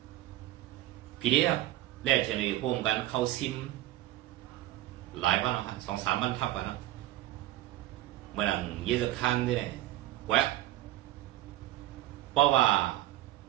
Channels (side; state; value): left; quieter; 15.2 dB